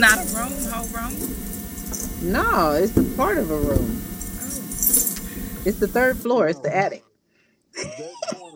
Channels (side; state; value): both; identical; correlation 1.00